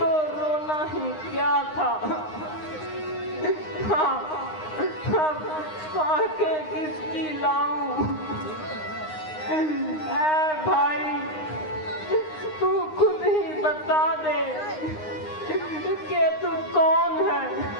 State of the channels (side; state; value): right; late; 9.7 ms